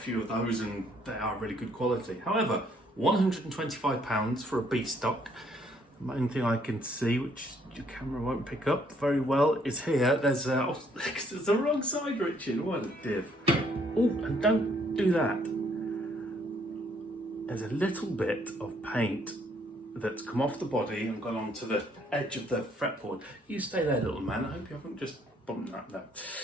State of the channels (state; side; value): normal; both; correlation 0.67